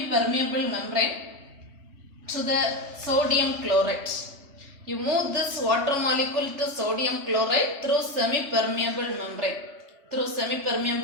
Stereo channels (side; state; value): left; late; 3.3 ms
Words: membrane to the sodium chloride. You move this water molecule to sodium chloride through semi-permeable membrane. Through